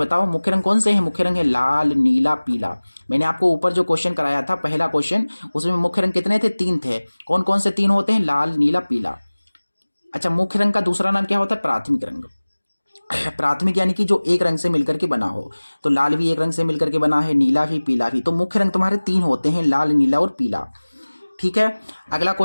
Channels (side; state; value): both; inverted; correlation -1.00